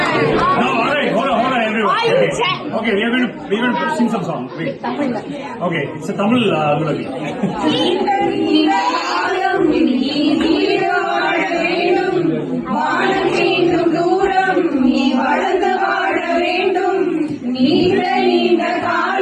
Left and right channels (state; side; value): identical; both; correlation 1.00